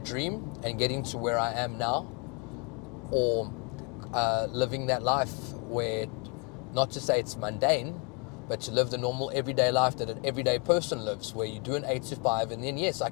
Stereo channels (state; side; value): quieter; right; 32.7 dB